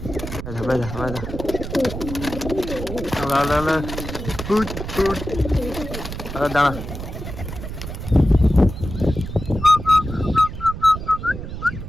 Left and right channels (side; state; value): right; noise; rumble, 8 dB below the sound